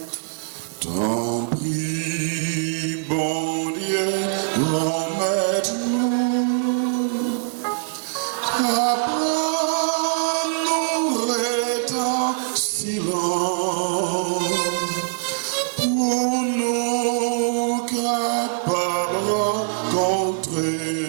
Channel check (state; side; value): silent; left; 64 dB below the other